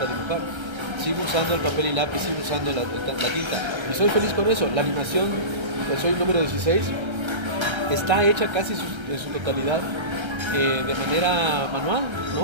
dibujar. Sigo usando el papel y lápiz, sigo usando la tinta. Y soy feliz con eso. La animación, pues soy el número 16, está hecha casi en su totalidad de manera manual,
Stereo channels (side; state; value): left; late; 1.3 ms